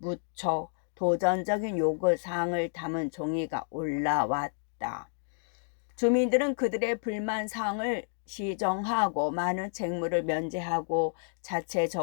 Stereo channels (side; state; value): right; silent; digital silence